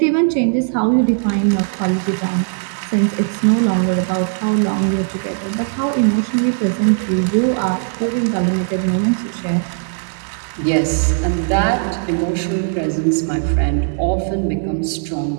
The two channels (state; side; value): silent; left; 66 dB below the other